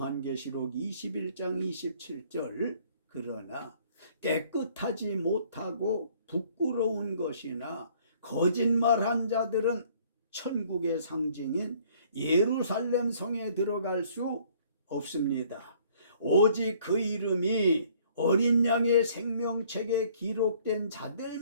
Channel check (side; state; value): both; inverted; correlation -0.59